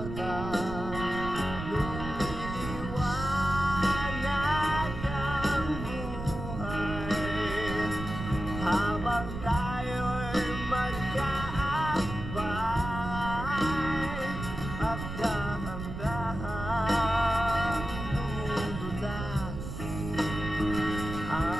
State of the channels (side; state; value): right; noise; rumble, 7 dB below the sound